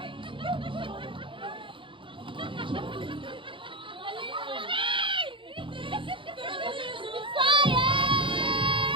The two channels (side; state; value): left; late; 0.25 ms